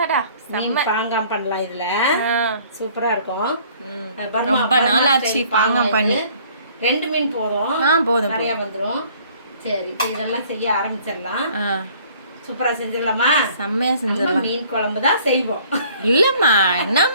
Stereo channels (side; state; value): both; inverted; correlation -0.56